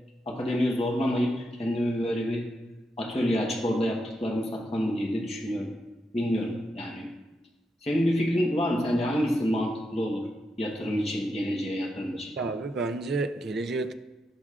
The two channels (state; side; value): normal; both; correlation 0.84